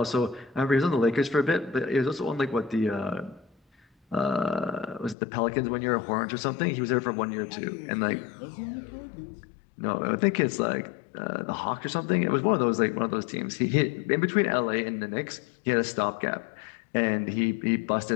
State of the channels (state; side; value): drops out; right; at 5.2 s